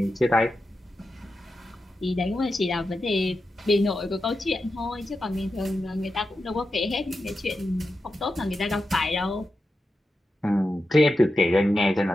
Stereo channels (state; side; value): normal; both; correlation 0.90